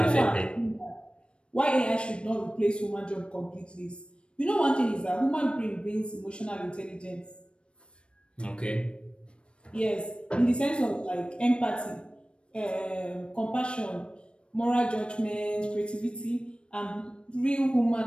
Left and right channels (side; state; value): right; late; 0.057 ms